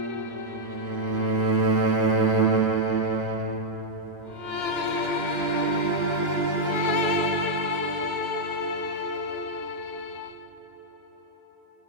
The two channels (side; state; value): both; normal; correlation -0.04